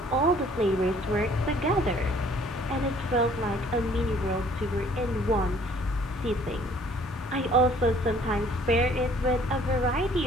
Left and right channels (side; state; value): both; normal; correlation 0.57